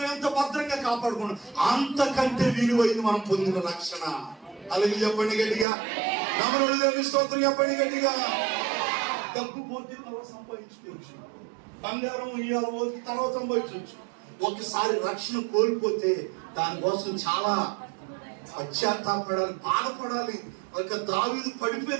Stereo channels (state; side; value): drops out; left; at 5.7 s